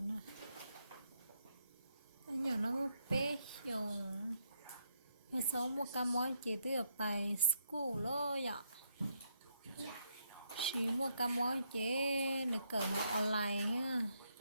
anh nhỏ nó một bé dùng hay số một cái món chỉ từ ở bài school lo vậy chỉ một cái món chỉ được cỡ họ online ha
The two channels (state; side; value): inverted; both; correlation -0.76